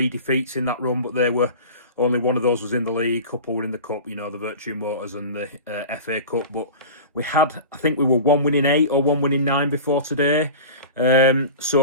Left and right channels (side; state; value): both; inverted; correlation -0.34